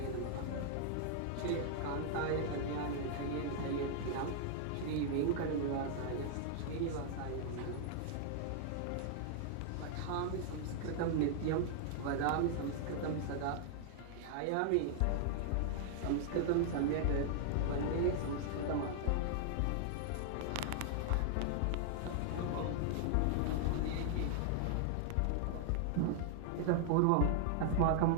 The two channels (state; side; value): different; both; correlation -0.01